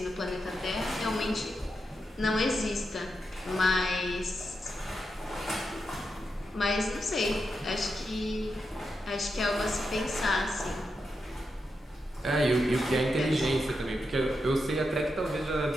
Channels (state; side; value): normal; both; correlation 0.86